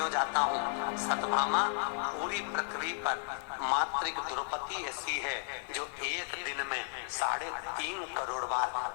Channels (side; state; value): right; silent; 55 dB below the other